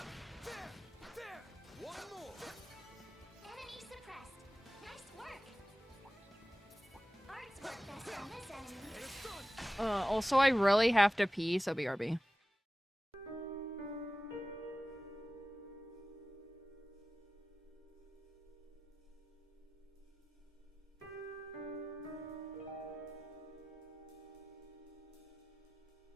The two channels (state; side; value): normal; both; correlation 0.95